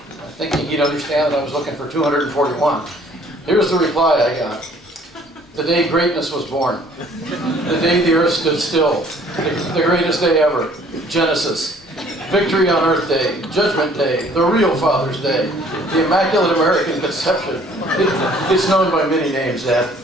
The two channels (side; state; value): both; normal; correlation 0.57